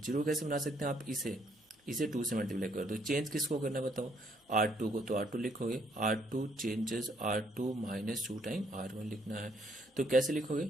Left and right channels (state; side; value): normal; both; correlation 0.68